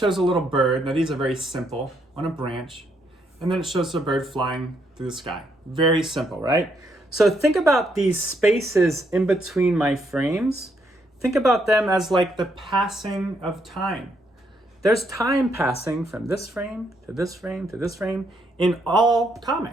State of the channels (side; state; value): both; normal; correlation 0.75